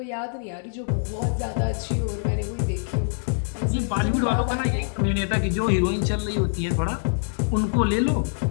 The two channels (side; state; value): right; silent; digital silence